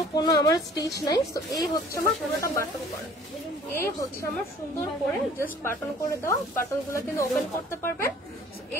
আমার স্টিচ নাই। তো এই হচ্ছে আমার পুরোটা বাটন করা, এই হচ্ছে আমার সুন্দর করে জাস্ট বাটন করে দেওয়া, বাটন গুলো কিন্তু ওপেন করতে পারবেন।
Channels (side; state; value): both; normal; correlation 0.52